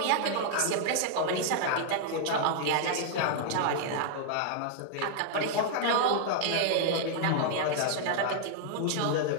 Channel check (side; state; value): both; different; correlation 0.00